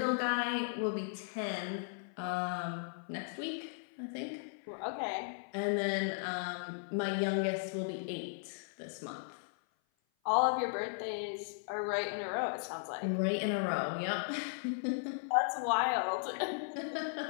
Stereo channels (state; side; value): silent; right; 53 dB below the other